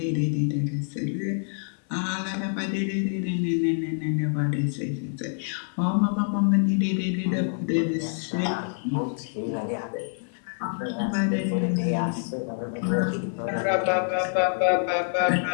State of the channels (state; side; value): silent; right; 61 dB below the other